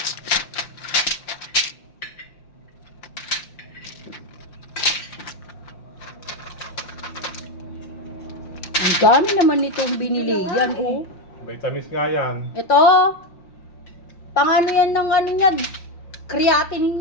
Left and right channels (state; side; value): late; right; 5.7 ms